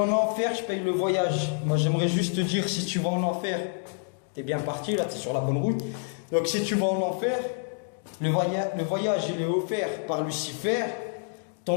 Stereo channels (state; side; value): silent; right; 60 dB below the other